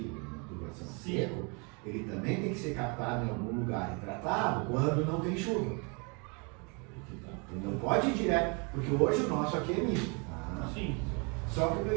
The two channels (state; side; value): quieter; left; 33.2 dB